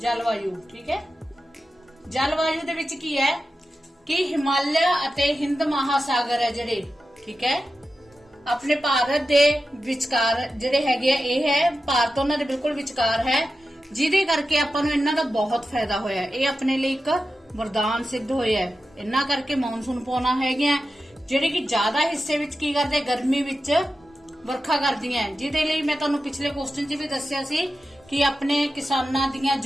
ਠੀਕ ਹੈ, ਜਲਵਾਯੂ ਦੇ ਵਿੱਚ ਕੀ ਹੈ ਕਿ ਹਿਮਾਲਿਆ ਅਤੇ ਹਿੰਦ ਮਹਾਸਾਗਰ ਹੈ ਜਿਹੜੇ, ਠੀਕ ਹੈ, ਆਪਣੇ ਭਾਰਤ ਦੇ ਵਿਚਕਾਰ ਜਿਹੜੇ ਹੈਗੇ ਆ, ਇਹ ਹੈ ਭਾਰਤ ਉਹਨਾਂ ਦੇ ਬਿਲਕੁਲ ਵਿਚਕਾਰ ਹੈ, ਜਿਹਦੇ ਕਰਕੇ ਆਪਾਂ ਨੂੰ ਇਹਨਾਂ ਦਾ ਬਹੁਤ ਫਾਇਦਾ ਹੋਇਆ। ਇਹ ਆਪਣੇ ਲਈ ਇੱਕ ਵਰਦਾਨ ਸਿੱਧ ਹੋਇਆ ਹੈ। ਇਹਨਾਂ ਕਰਕੇ ਮੌਨਸੂਨ ਪੌਣਾ ਹੈਗੀਆਂ ਜਿਹੜੇ ਕਿ ਜ਼ਿਆਦਾ ਹਿੱਸੇ ਵਿੱਚ ਕੀ ਕਰਦੇ, ਗਰਮੀ ਵਿੱਚ ਵਰਖਾ ਕਰਦੀਆਂ, ਜਿਹਦੇ ਲਈ ਮੈਂ ਤੁਹਾਨੂੰ ਪਿਛਲੇ ਕੁਐਸਚਨ 'ਚ ਵੀ ਦੱਸਿਆ ਸੀ ਕਿ ਆਪਣੇ ਕਿਸਾਨਾਂ ਦੀਆਂ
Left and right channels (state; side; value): normal; both; correlation 0.92